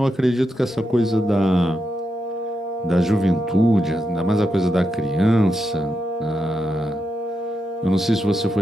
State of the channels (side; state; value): both; normal; correlation 0.85